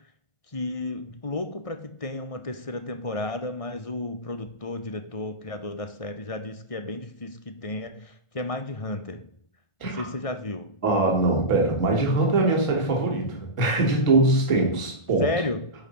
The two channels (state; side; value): late; right; 1.4 ms